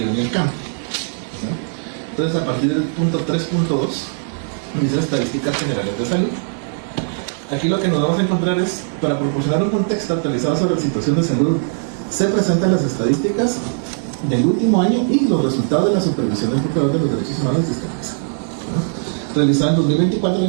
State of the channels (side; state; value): left; silent; digital silence